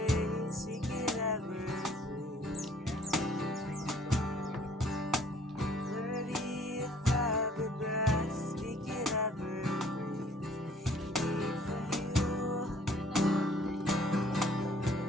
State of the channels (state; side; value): normal; both; correlation 0.58